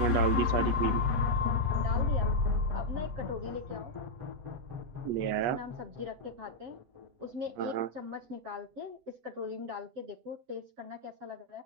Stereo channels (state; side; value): late; left; 7.9 ms